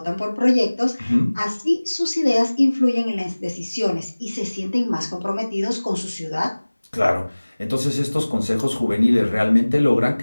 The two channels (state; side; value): inverted; both; correlation -1.00